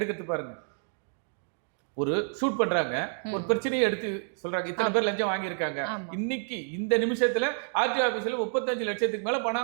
பாருங்க. ஒரு ஷூட் பண்றாங்க, ஒரு பிரச்சனையை எடுத்து சொல்றாங்க, இத்தனை பேர் லஞ்சம் வாங்கியிருக்காங்க, இன்னைக்கு இந்த நிமிஷத்துல ஆர்டிஓ ஆபீஸ்ல 35 லட்சத்துக்கு மேல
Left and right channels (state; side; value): silent; left; 59 dB below the other